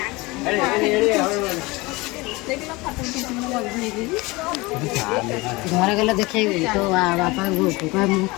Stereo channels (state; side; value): quieter; right; 23.1 dB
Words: घर गला देखे तो बापा